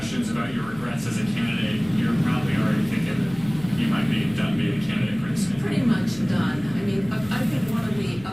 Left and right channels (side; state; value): left; noise; hum, 18 dB below the sound